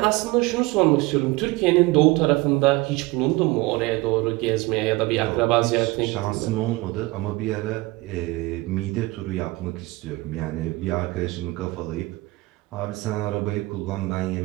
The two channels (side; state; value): left; quieter; 21.7 dB